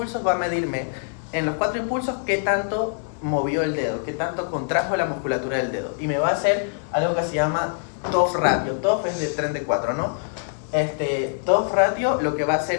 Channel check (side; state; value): right; silent; 59 dB below the other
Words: va a medirme, en los 4 impulsos, qué tanto movió el dedo, qué tanto contrajo la musculatura del dedo. Y me va a hacer algo que se llama TOF ratio. TOF es de tren de 4, ¿no? TOF ratio lo que va a